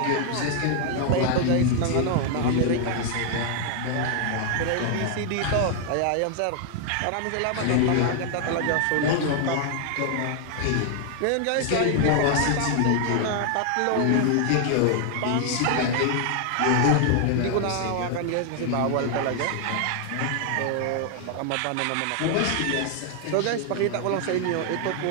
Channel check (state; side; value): different; both; correlation 0.00